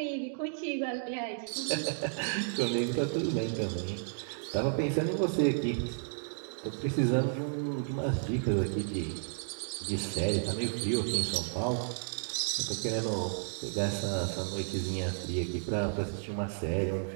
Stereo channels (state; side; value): silent; left; digital silence